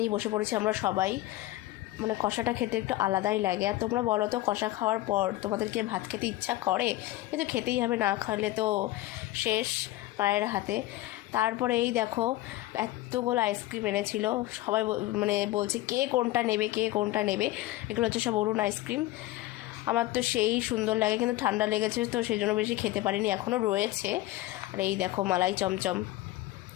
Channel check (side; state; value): right; quieter; 17.0 dB